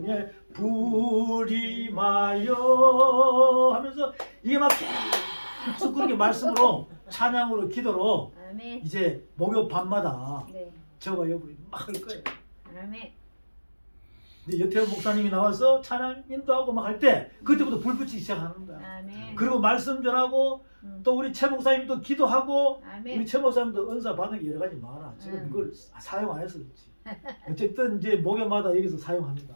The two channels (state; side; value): inverted; both; correlation -1.00